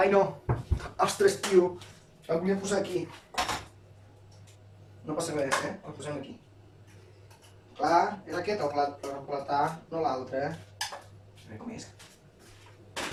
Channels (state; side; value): identical; both; correlation 1.00